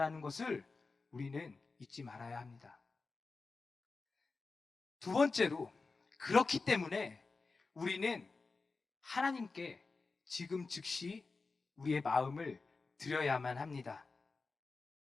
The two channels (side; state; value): right; quieter; 4.1 dB